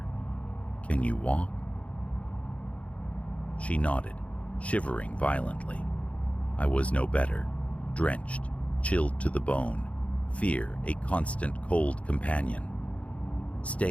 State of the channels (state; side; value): late; right; 0.064 ms